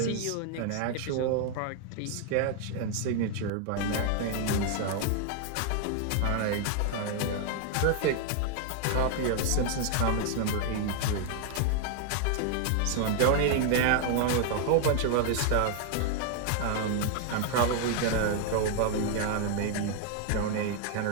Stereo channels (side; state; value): both; different; correlation 0.00